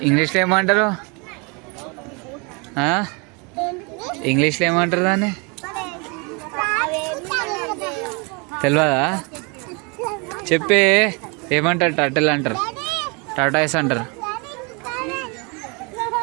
ఇంగ్లీష్లో ఏమంటారు? ఇంగ్లీష్లో ఏమంటారు దాన్ని? తెలియదా? చెప్పే. ఏమంటారు? టర్టిల్ అంటారు, టాటాయిస్ అంటారు.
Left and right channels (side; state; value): left; quieter; 31.2 dB